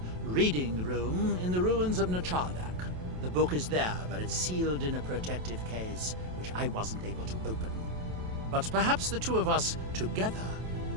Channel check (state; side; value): late; left; 27 ms